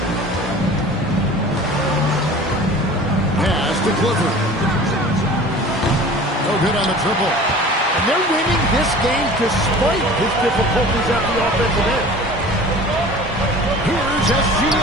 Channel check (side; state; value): both; normal; correlation 0.42